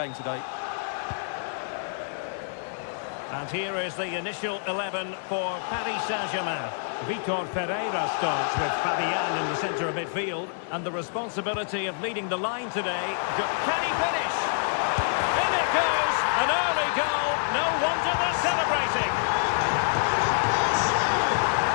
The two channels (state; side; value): silent; right; digital silence